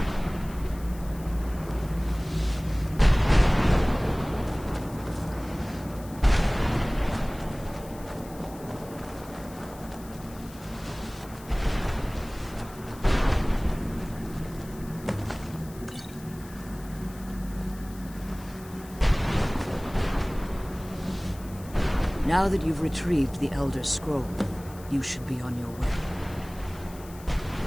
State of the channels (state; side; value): noise; left; hiss, 20 dB below the sound